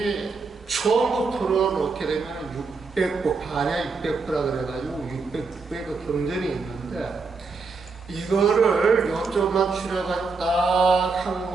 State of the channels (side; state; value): left; quieter; 4.4 dB